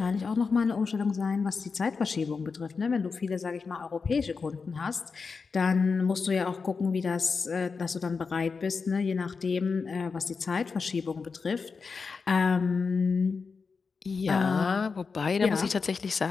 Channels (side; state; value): right; quieter; 4.9 dB